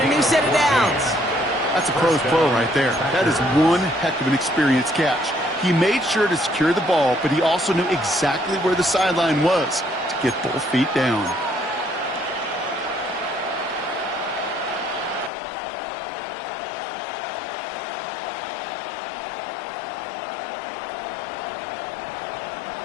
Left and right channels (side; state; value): right; drops out; at 15.3 s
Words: a new set of downs. That's a pro's pro right there. That is one heck of an experienced catch. He made sure to secure the ball, but he also knew exactly where the sideline was to get both feet down.